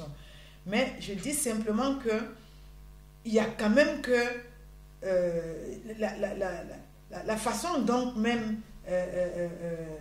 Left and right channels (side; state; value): both; identical; correlation 1.00